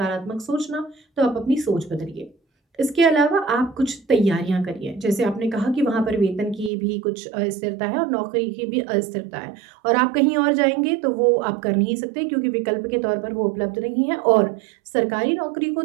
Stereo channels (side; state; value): left; drops out; at 6.7 s